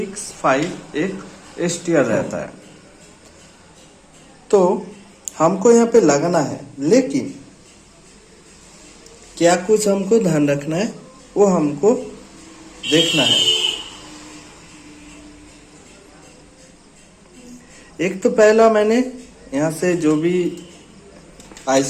एक STR रहता है। तो हमको यहाँ पे लगाना है, लेकिन क्या कुछ हमको ध्यान रखना है वो हमको देखना है। एक तो पहला मैंने यहाँ से जो भी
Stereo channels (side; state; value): both; identical; correlation 1.00